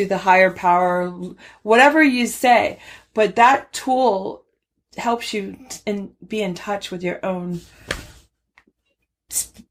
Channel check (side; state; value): both; identical; correlation 1.00